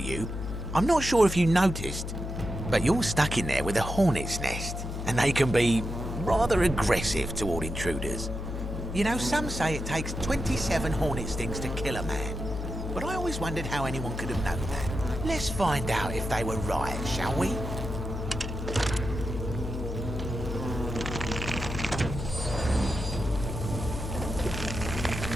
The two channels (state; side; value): noise; left; hum, 5 dB below the sound